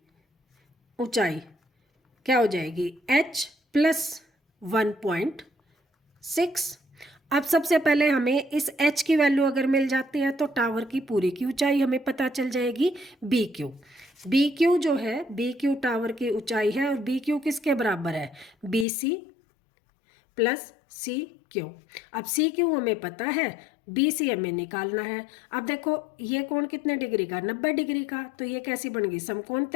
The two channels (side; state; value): right; drops out; at 18.9 s